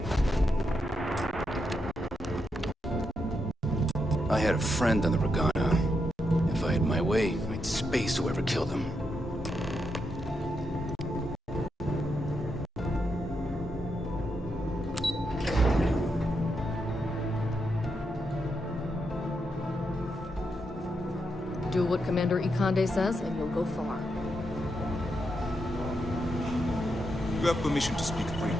I had a friend on the Regana. If I had my way, I'd space whoever killed him. Do what Commander Ikande says, and you'll go far. You have permission to speak freely.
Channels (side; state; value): both; normal; correlation 0.83